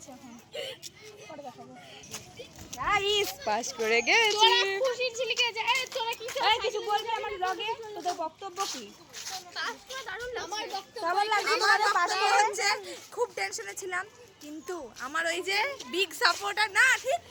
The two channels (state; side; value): identical; both; correlation 1.00